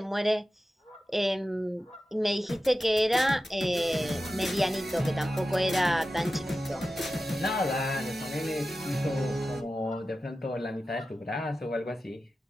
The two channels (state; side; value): normal; both; correlation 0.93